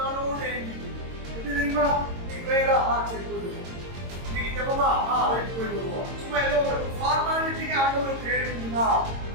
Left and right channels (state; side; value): late; left; 22 ms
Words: ஏங்குது. எப்படி தெரியுமா? நீ வேறா சரி போயிடுவோம், நீங்க ஜெபமா ரைட் போயிடுவோம். சும்மா ஏதோ ஒரு ஃபார்மாலிட்டிக்கு ஆண்டவர் தேடுவீங்களா?